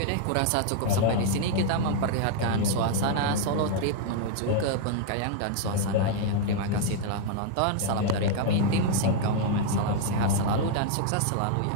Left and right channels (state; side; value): different; both; correlation 0.00